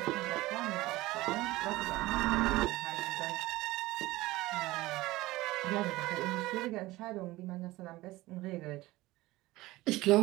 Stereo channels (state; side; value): quieter; left; 18.8 dB